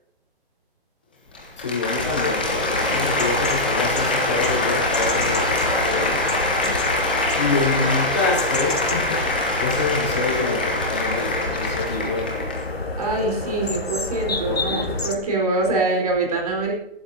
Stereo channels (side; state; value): both; normal; correlation -0.05